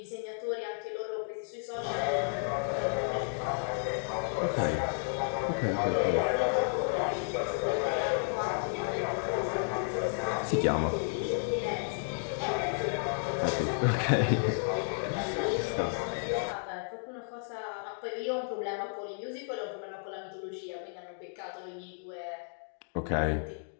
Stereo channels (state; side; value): silent; right; 56 dB below the other